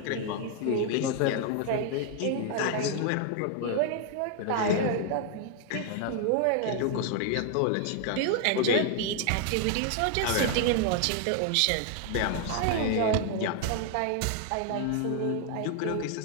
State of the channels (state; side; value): different; both; correlation 0.00